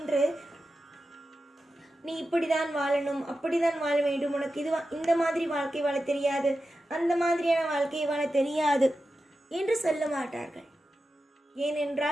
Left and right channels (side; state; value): both; normal; correlation 0.91